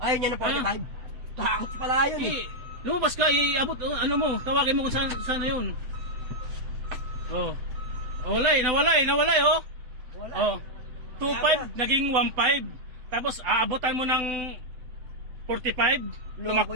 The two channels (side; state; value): left; late; 7.9 ms